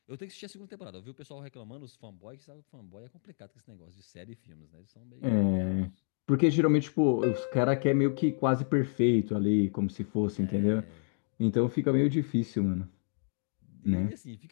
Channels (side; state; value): right; silent; 58 dB below the other